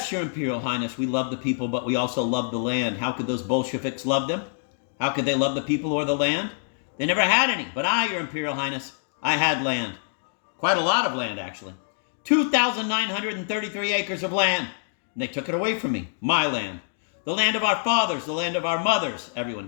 Your Imperial Highness, we love the people, but we also love the land. How could those Bolsheviks love them? How could they love the people or the land? They never had any, but I, Your Imperial Highness, I had land. Quite a lot of land, actually. 2,933 acres of land. And they took it away from me. My land. The land of our fathers, the land of our mothers. Everyone,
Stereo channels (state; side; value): silent; right; digital silence